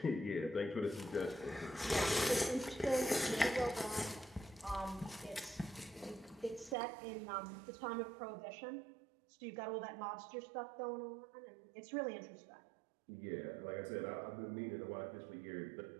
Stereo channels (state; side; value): drops out; left; at 6.8 s